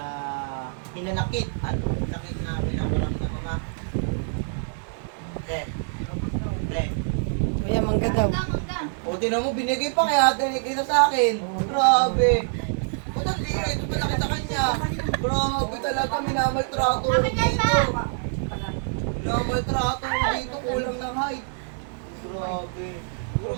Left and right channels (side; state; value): left; silent; digital silence